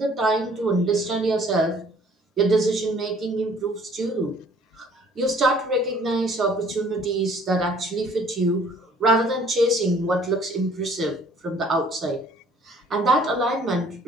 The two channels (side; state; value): both; normal; correlation 0.56